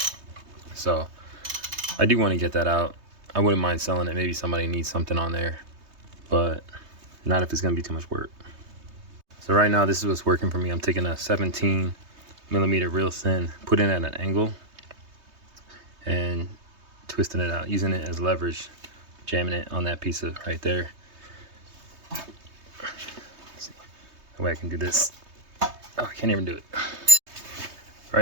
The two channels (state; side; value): late; left; 3.2 ms